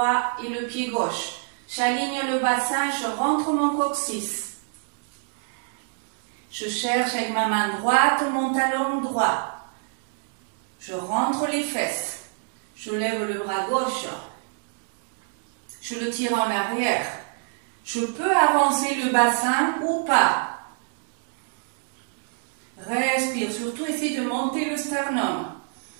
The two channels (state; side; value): silent; left; 61 dB below the other